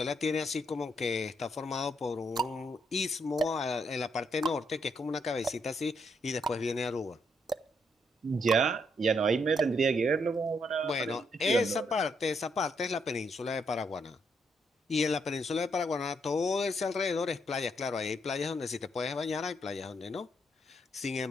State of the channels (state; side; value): normal; both; correlation 0.75